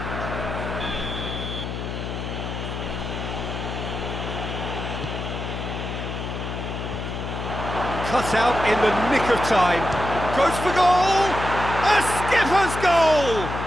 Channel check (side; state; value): left; noise; hum, 5 dB below the sound